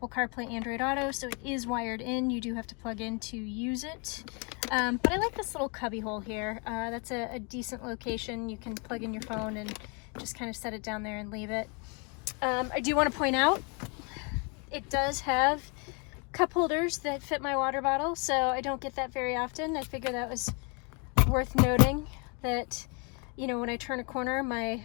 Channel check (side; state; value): right; quieter; 34.2 dB